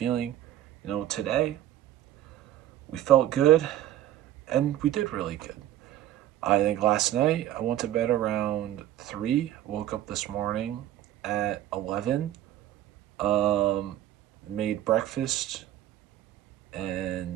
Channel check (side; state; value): left; quieter; 12.9 dB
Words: Today we felt good and we did really good. I think last night I went to bed around 3, woke up this morning at 11, um, made breakfast